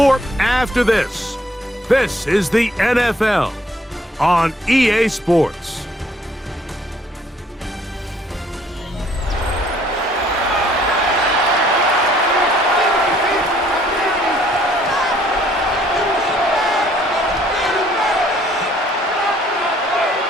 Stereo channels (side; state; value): both; normal; correlation 0.62